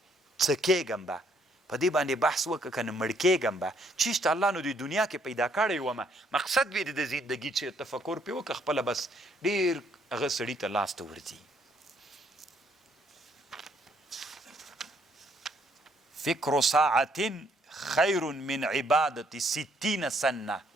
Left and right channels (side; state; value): both; normal; correlation 0.68